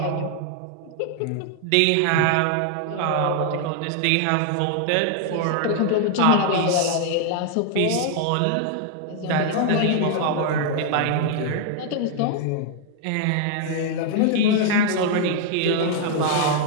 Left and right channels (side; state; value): both; different; correlation 0.00